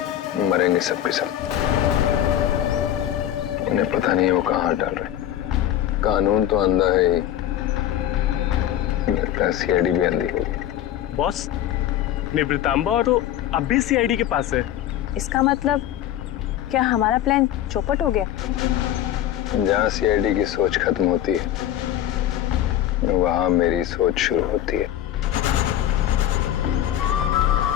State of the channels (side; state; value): right; quieter; 11.9 dB